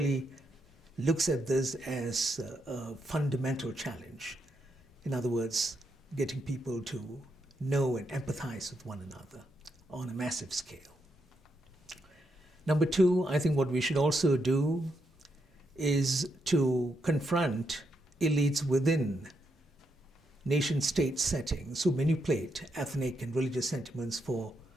looks at this as a fundamental challenge. In other words, getting people to know and empathize with one another on a massive scale. Number two, I think what we should also do is to confront elites within nation-state settings who manipulate ethnic and religious sentiments for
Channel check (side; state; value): both; normal; correlation 0.81